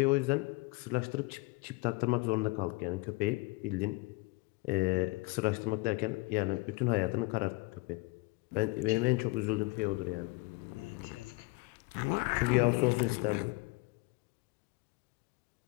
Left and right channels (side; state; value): right; quieter; 25.2 dB